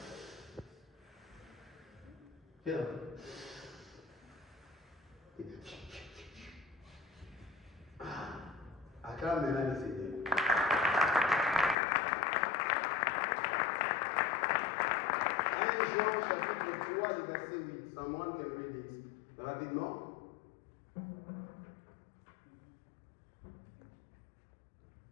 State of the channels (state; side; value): drops out; right; at 11.8 s